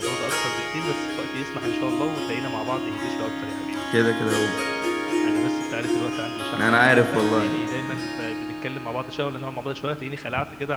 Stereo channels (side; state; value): left; noise; hum, 28 dB below the sound